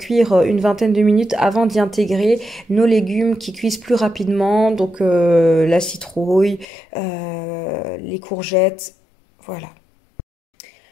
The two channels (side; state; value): right; drops out; at 6.7 s